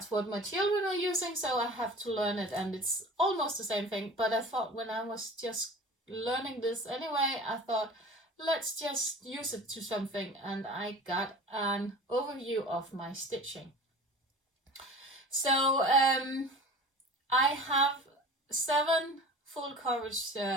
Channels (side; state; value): both; normal; correlation 0.39